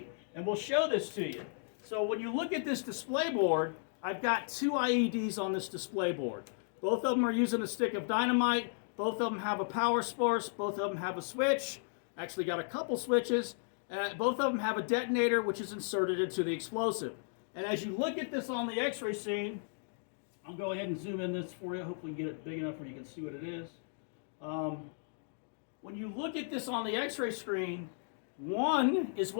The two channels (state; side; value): silent; right; digital silence